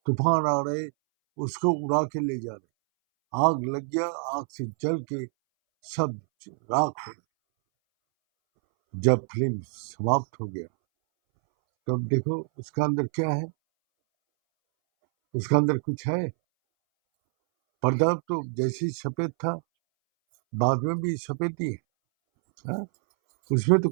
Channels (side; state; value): left; silent; 61 dB below the other